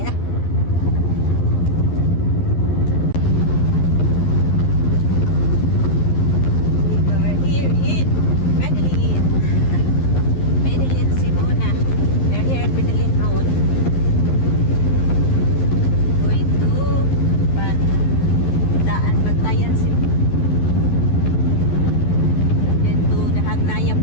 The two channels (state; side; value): late; right; 11 ms